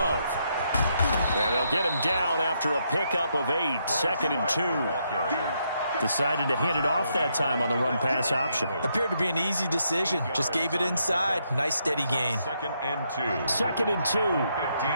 And they'll get him down after a pickup of 8. Second and 2. Decided to hand it off that time on the run-pass option. Appeared to be an easy decision. Just gave it inside. Nice steady gain. Second and 2. Second and 2.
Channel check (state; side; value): inverted; both; correlation -0.77